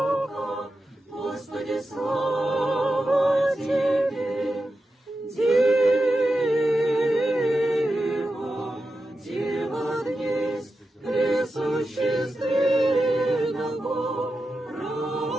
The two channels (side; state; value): both; normal; correlation 0.90